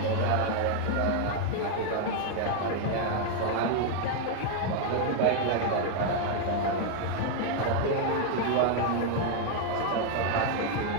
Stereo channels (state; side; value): different; both; correlation 0.00